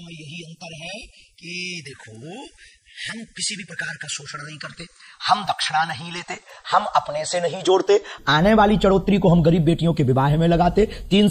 यही अंतर है कि देखो, हम किसी भी प्रकार का शोषण नहीं करते, हम दक्षिणा नहीं लेते, हम अपने से नहीं जोड़ते। आने वाली चढ़ोतरी को हम गरीब बेटियों के विवाह में लगाते, 3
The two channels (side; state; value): both; identical; correlation 1.00